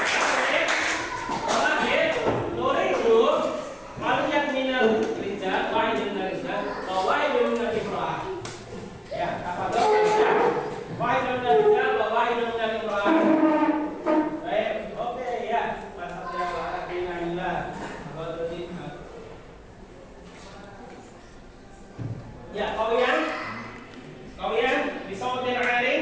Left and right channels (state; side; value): identical; both; correlation 1.00